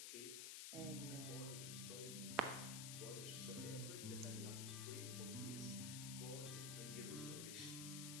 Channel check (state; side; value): noise; left; hiss, 1 dB below the sound